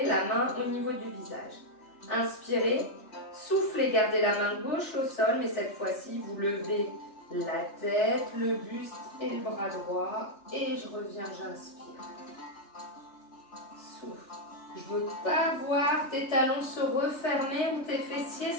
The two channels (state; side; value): late; right; 3.3 ms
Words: la main au niveau du visage. Inspirez, soufflez, gardez la main gauche au sol, mais cette fois-ci, vous levez la tête, le buste et le bras droit. Et je reviens, j'inspire. Souffle. Je ne veux pas voir tes talons se refermer ou tes fessiers